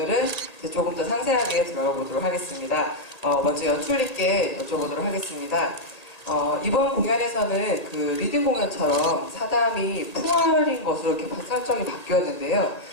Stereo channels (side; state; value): right; late; 1.8 ms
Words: 이제 조금 더 상세하게 들어가 보도록 하겠습니다. 먼저 연출님께 여쭤보도록 하겠습니다. 이번 공연에서는 그 리딩 공연처럼 사담이 풍월인 것으로 이렇게 설정이 바뀌었는데요.